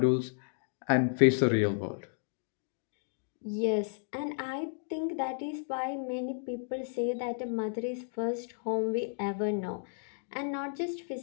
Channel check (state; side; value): silent; right; digital silence